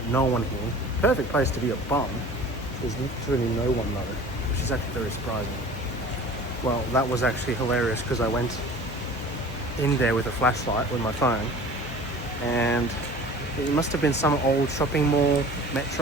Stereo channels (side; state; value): both; normal; correlation 0.42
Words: no one here. Perfect place to be a bum. There's literally no one though, which is actually very surprising. Well, that was actually hilarious, because I went in there with a flashlight with my phone, and it must have been some old shopping mall,